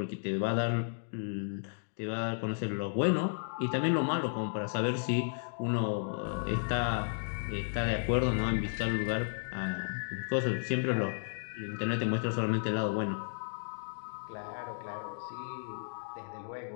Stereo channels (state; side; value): silent; right; digital silence